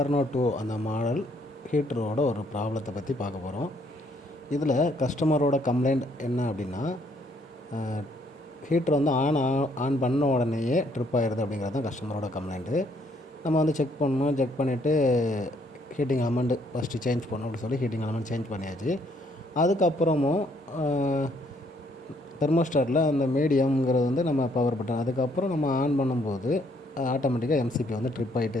2 அந்த மாடல் ஹீட்டரோட ஒரு ப்ராப்ளத்தை பற்றி பார்க்க போகிறோம். இதில் கஸ்டமரோட கம்ப்ளைண்ட் என்ன அப்படின்னா, ஹீட்ரு ஆன் பண்ண உடனேயே ட்ரிப் ஆகிடுது அப்படிங்கிறது தான் கஸ்டமரோட கம்ப்ளைண்ட்டு. நம்ம செக் பண்ணணும். செக் பண்ணிவிட்டு ஹீட்டிங் எலமெண்ட் ஃபஸ்ட்டு சேஞ்ச் பண்ணணும் அப்படின்னு சொல்லி ஹீட்டிங் எலமெண்ட் சேஞ்ச் பண்ணியாச்சு. அதுக்கப்புறமும் தெர்மோஸ்டாட்டில் அந்த மீடியம்ங்கிறது நம்ம பவர் பட்டன் அதுக்கப்புறம் நம்ம ஆன் பண்ணும்போது ஆட்டோமேட்டிக்காக எம்சிபி ட்ரிப்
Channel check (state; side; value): normal; both; correlation 0.68